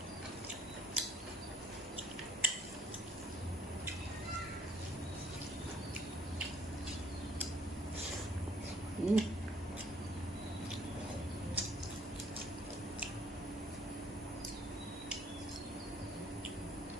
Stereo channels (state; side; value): normal; both; correlation 0.60